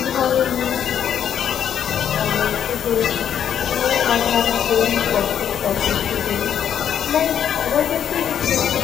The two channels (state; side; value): quieter; right; 9.1 dB